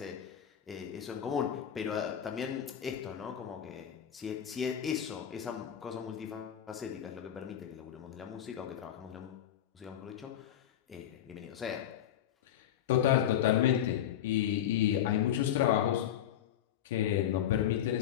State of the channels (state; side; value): quieter; right; 10.4 dB